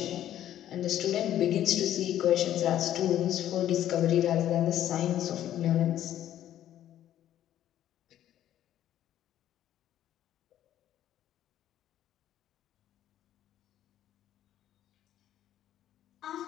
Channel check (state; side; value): quieter; right; 11.8 dB